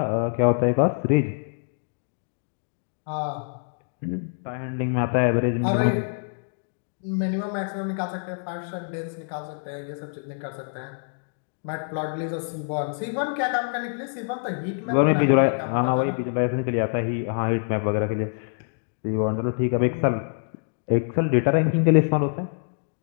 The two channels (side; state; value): right; silent; digital silence